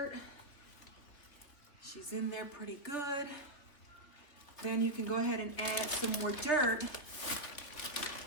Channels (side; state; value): right; late; 3.4 ms